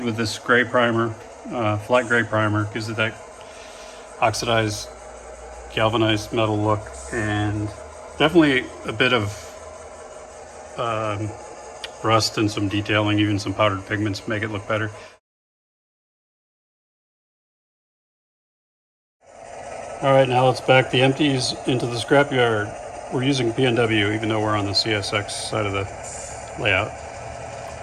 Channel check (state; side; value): identical; both; correlation 1.00